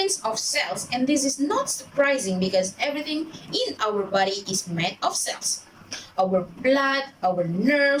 of cells, and this is not surprising because everything in our body is made of cells. Our blood, our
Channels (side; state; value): both; identical; correlation 1.00